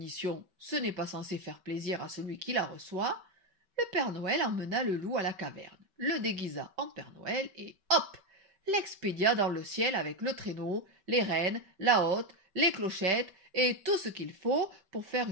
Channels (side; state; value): left; late; 5.2 ms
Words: ce n'est pas censé faire plaisir à celui qui la reçoit, le Père Noël emmena le loup à la caverne, le déguisa en Père Noël et hop! l'expédia dans le ciel avec le traîneau, les rênes, la hotte, les clochettes et tout ce qu'il faut pour faire